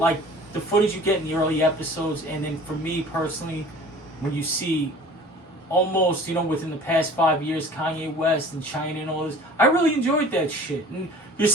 the footage you get in the early episodes, and then for me personally, when you see almost within the past 5 years Kanye West and China and all this, I really enjoyed that shit. And you're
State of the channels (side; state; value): both; normal; correlation 0.45